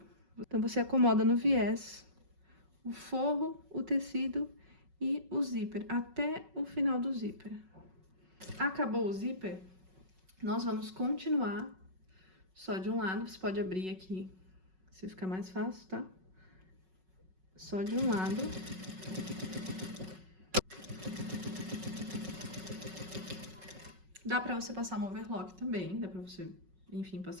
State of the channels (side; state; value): left; late; 5.4 ms